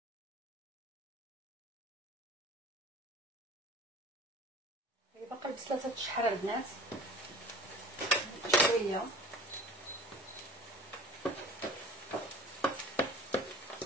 البصله تتشحر البنات شويه.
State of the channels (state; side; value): normal; both; correlation 0.44